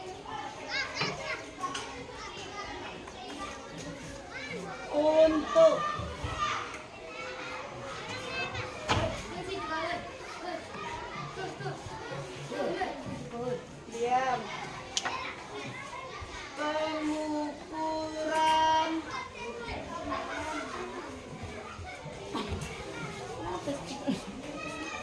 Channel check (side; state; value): both; identical; correlation 1.00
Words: untuk diam pengukuran